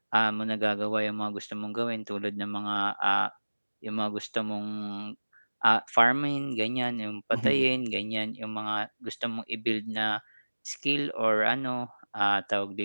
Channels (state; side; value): inverted; both; correlation -1.00